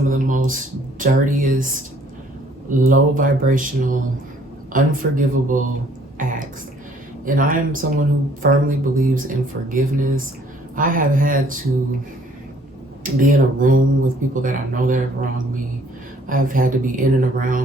of the most dirtiest, low vibrational, unforgivable acts. And I am someone who firmly believes in forgiveness. I have had to be in a room with people that I know that have wronged me. I've had to be in and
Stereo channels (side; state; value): both; normal; correlation 0.60